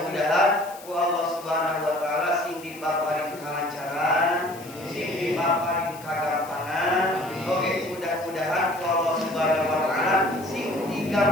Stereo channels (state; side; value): noise; left; hiss, 19 dB below the sound